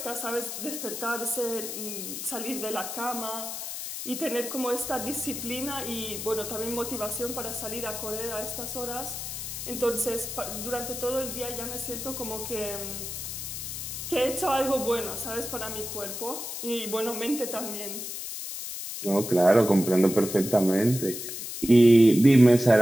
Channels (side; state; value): left; noise; hiss, 7 dB below the sound